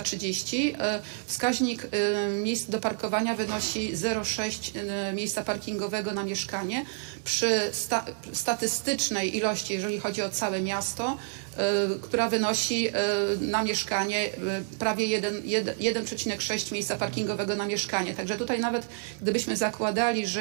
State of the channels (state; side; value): silent; left; 59 dB below the other